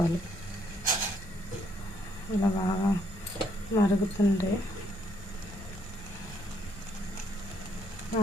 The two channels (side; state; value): both; normal; correlation 0.71